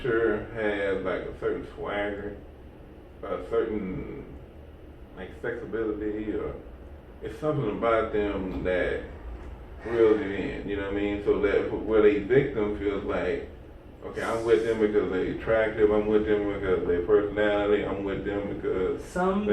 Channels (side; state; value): both; identical; correlation 1.00